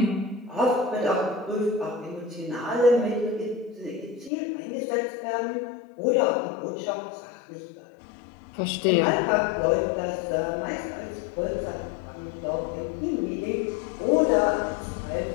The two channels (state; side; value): drops out; right; at 4.3 s